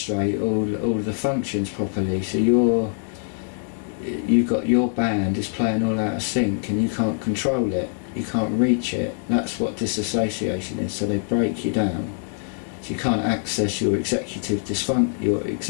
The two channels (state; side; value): silent; right; digital silence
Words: all the functions properly. So you've got your band is playing all out of sync and you can't control it, you can't reach it. That's what dissociation is. So they break you down, so you can't access your executive